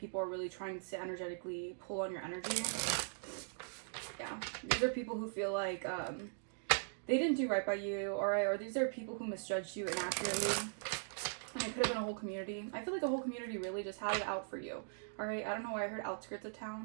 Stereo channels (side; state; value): left; silent; digital silence